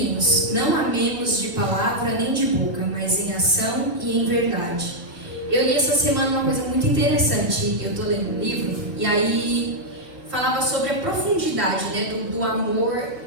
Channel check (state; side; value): late; left; 3.3 ms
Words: não amemos de palavra nem de boca, mas em ação e em verdade. Eu li essa semana uma coisa muito interessante. Eu estou lendo um livro e aí falava sobre a profundidade, né, do amor,